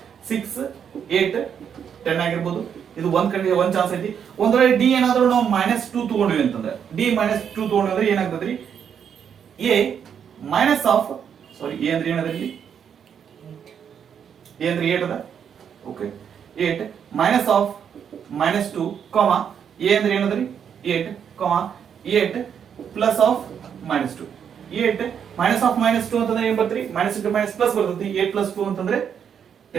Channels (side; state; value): left; quieter; 7.9 dB